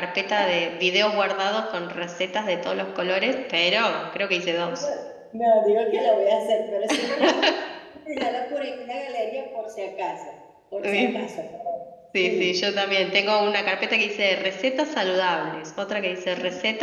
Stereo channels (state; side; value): identical; both; correlation 1.00